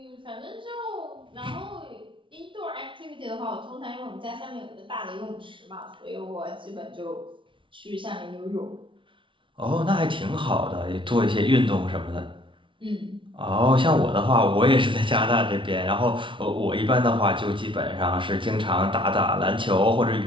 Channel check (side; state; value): left; late; 0.25 ms